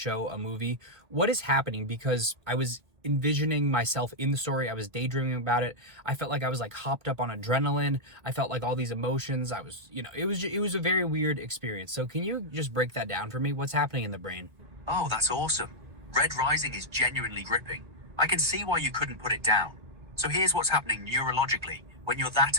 a movie. What is happening? Because I was envisioning myself in the story. I was daydreaming about it. I felt like I was like hopped up on adrenaline. I felt like all these emotions. I was, it was a very weird experience. So can you just break that down for me? What's happening in the brain? Oh, that's awesome. Red Rising is genuinely gripping. I can see why you couldn't put it down. So here's what's happening neurologically when you're that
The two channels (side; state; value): left; late; 1.7 ms